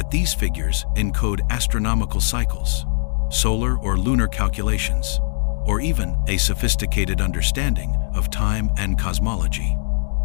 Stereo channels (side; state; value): right; silent; digital silence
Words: these figures encode astronomical cycles, solar or lunar calculations, or even a sophisticated understanding of time and cosmology.